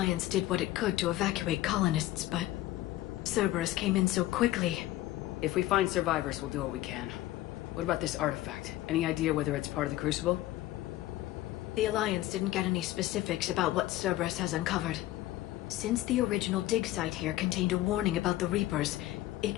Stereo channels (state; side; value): quieter; right; 15.7 dB